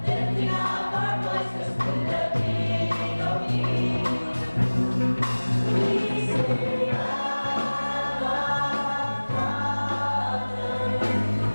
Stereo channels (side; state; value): both; inverted; correlation -1.00